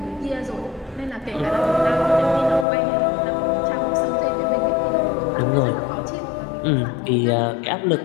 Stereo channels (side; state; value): right; drops out; at 2.7 s